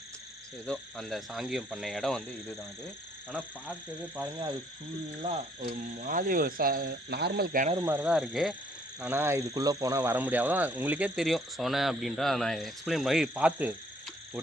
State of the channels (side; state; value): both; normal; correlation 0.64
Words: ஏதோ அந்த சாங்கியம் பண்ண இடம் வந்து இதுதான் அது. ஆனால் பார்க்கவே பாருங்கள் அது ஃபுல்லாக ஒரு மாதிரி ஒரு நார்மல் கிணறு மாதிரி தான் இருக்குது. ஆனால் இதுக்குள்ளே போனால் வர முடியாது. உங்களுக்கே தெரியும் சொன்னேன் அப்படின்றா நான் எக்ஸ்பிளைன் பண்ணி பார்த்து